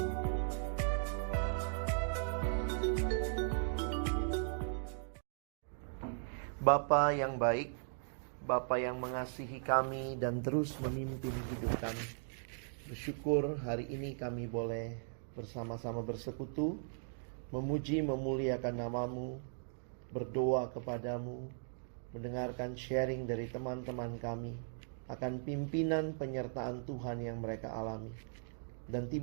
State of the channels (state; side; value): silent; left; digital silence